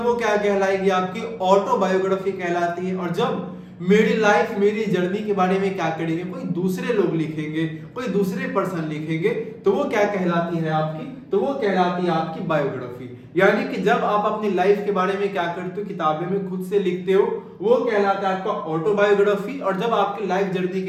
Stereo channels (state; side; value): identical; both; correlation 1.00